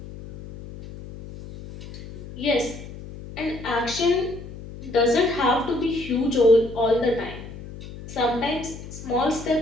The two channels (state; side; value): noise; left; hum, 13 dB below the sound